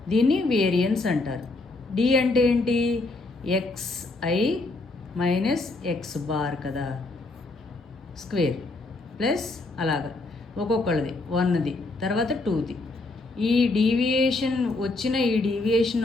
దీన్ని వేరియన్స్ అంటారు. డి అంటే ఏంటి, xi మైనస్ x బార్ కదా, స్క్వేర్ ప్లస్ అలాగా ఒక్కొక్కళ్ళది 1ది తర్వాత 2ది. ఈ డీవియేషన్ వచ్చిన ఈ డీవియేషన్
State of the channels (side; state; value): right; quieter; 3.2 dB